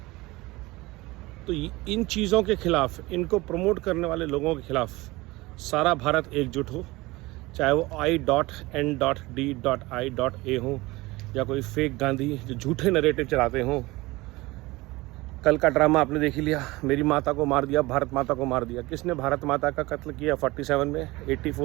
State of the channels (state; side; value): quieter; left; 21.1 dB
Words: तो इन चीज़ों के खिलाफ, इनको प्रमोट करने वाले लोगों के खिलाफ सारा भारत एकजुट हो, चाहे वो I.N.D.I.A हो या कोई फेक गांधी जो झूठे नरेटिव चलाते हों। कल का ड्रामा आपने देख ही लिया, मेरी माता को मार दिया, भारत माता को मार दिया। किसने भारत माता का कत्ल किया 47 में,